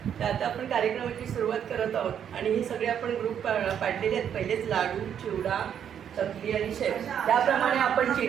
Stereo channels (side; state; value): left; quieter; 8.8 dB